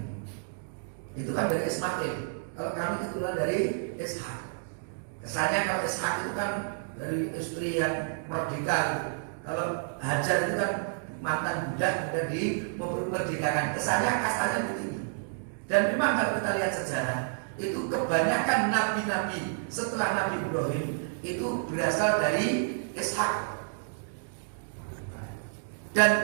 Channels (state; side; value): silent; left; digital silence